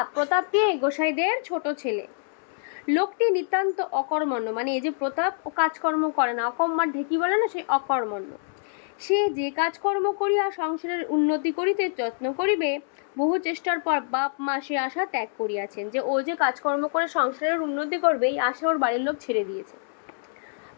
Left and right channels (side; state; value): right; silent; 61 dB below the other